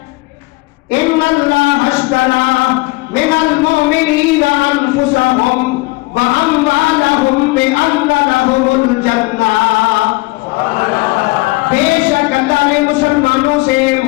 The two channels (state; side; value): quieter; right; 23.2 dB